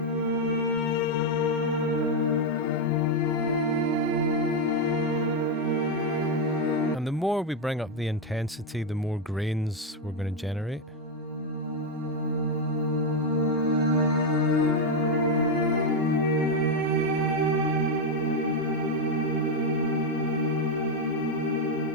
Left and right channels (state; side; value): normal; both; correlation 0.04